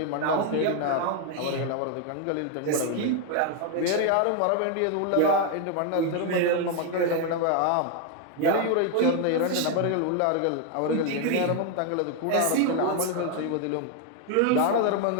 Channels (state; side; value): different; both; correlation 0.01